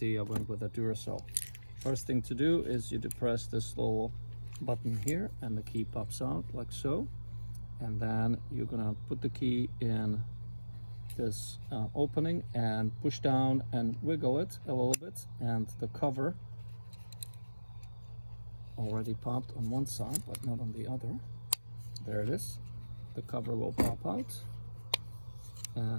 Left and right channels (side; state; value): both; inverted; correlation -1.00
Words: I went with a Duracell. First thing to do is you depress this little button here and the key pops out like so, and then you're gonna put the key in this opening and push down and wiggle it a little bit, and the cover already popped on one side but not on the other. There it is. The cover will pop out